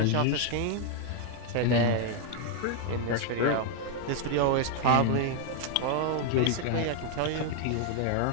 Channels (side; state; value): both; different; correlation 0.01